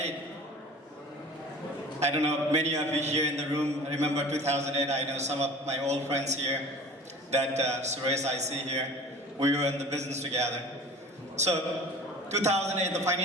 I don't know, many of you here in the room remember 2008. I know some of my old friends here that Suresh I see here. We were in the business together. So 2008, the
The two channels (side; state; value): both; normal; correlation 0.42